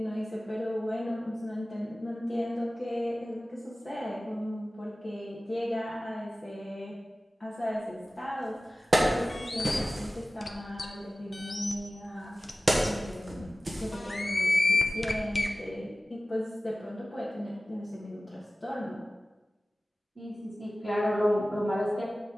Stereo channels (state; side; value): normal; both; correlation 0.96